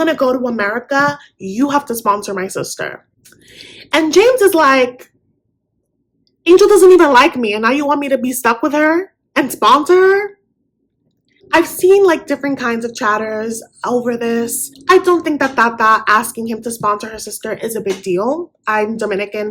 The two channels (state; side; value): identical; both; correlation 1.00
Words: to go to America, you have to sponsor my sister. And James is like, Angel doesn't even like me, and now you want me to be stuck with her and sponsor her? I've seen like different kinds of chatters over this. I don't think that Tata asking him to sponsor her sister is a big deal. I'm